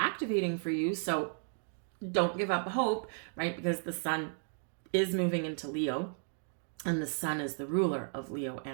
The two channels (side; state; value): left; silent; 55 dB below the other